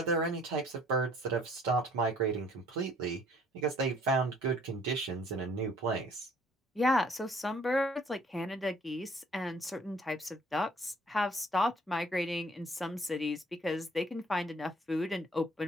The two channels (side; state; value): both; normal; correlation 0.59